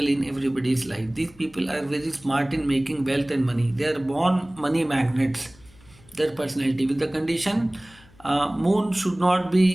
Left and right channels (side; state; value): left; noise; hum, 26 dB below the sound